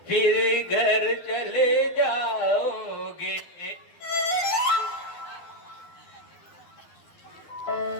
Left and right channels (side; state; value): right; late; 11 ms